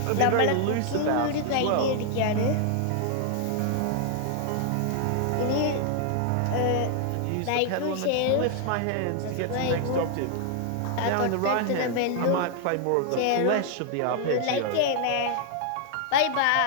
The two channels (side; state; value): both; different; correlation 0.00